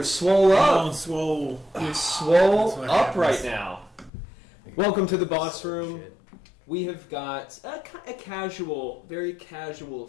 swole I'm up. on swole. You're swole what up happens. right now. Welcome to the boss room. We have got a casual, very casual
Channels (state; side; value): drops out; right; at 4.1 s